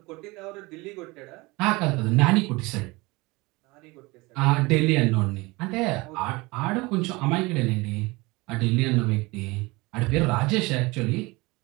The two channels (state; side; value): quieter; left; 23.5 dB